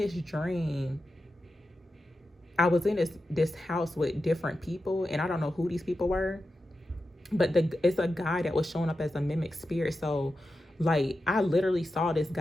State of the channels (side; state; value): both; normal; correlation 0.91